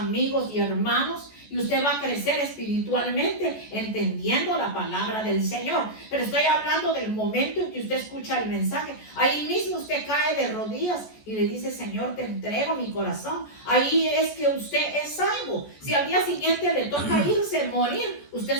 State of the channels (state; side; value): late; right; 14 ms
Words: y hermanos, y usted va a crecer espiritualmente entendiendo la palabra del Señor. Pero estoy hablando del momento en que usted escucha el mensaje. Ahí mismo usted cae de rodillas y le dice: Señor, te entrego mi corazón. Ahí es que usted es salvo. Si al día siguiente le toca irse, morir, usted